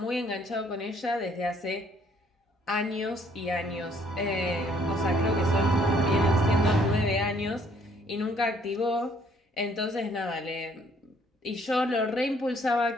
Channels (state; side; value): normal; both; correlation 0.63